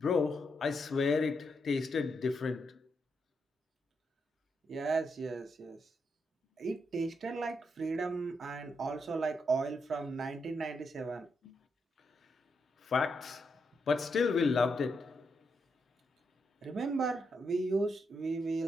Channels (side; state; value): both; normal; correlation 0.81